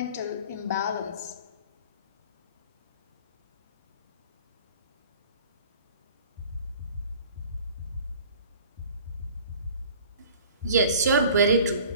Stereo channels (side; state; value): both; inverted; correlation -0.47